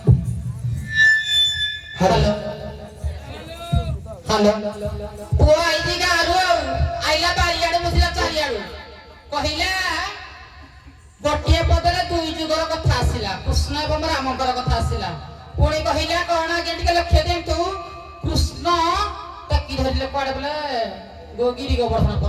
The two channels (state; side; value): identical; both; correlation 1.00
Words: हेलो हेलो पुआ आईदी गारू आइला बारियाडे मुसिला चारियाडू कहिला गोटिए पदले दुई जुगर कथा आसिला कृष्ण एवं रामकर कथा आसिला पुणी कहिला कोना गेंटिके लक्ष्य देंतु कृष्ण टकी धरिले पड़े बोले गोगिरी गोवर्धन